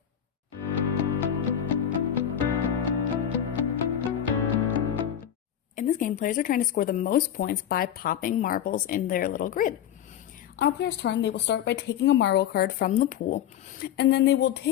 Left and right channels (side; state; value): right; quieter; 10.0 dB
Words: In this game, players are trying to score the most points by popping marbles in their little grid. On a player's turn, they will start by taking a marble card from the pool, and then they will